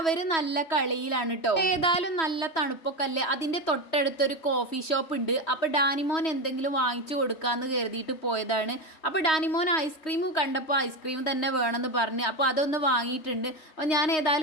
നല്ല കളിയിലാണ് കേട്ടോ. ഏതായാലും നല്ല തണുപ്പൊക്കെ അല്ലേ. അതിന്റെ തൊട്ടടുത്തൊരു കോഫി ഷോപ്പ് ഉണ്ട്. അപ്പോൾ ഡാനിമോൻ എന്തെങ്കിലും വാങ്ങിച്ചു കൊടുക്കാമെന്ന് കരുതിയിട്ട് പോയതാണ്. അപ്പോൾ ഡാനിമോൻ ഐസ്ക്രീം കണ്ടപ്പോൾ ഐസ്ക്രീം തന്നെ വേണമെന്ന് പറഞ്ഞ് അപ്പോൾ അതൊന്ന് വാങ്ങിയിട്ടുണ്ട്. അപ്പോൾ ഞാൻ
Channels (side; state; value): right; late; 3.1 ms